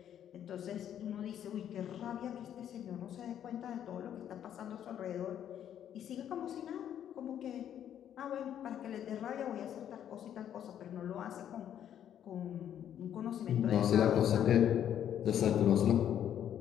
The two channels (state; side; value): quieter; right; 10.0 dB